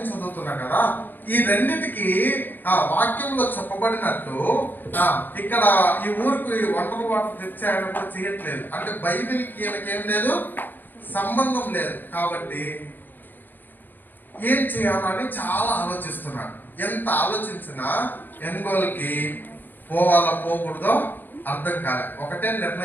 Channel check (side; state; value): right; late; 0.090 ms